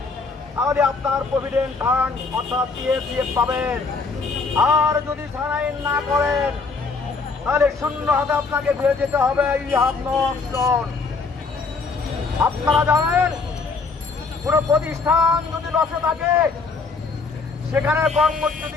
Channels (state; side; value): quieter; right; 4.3 dB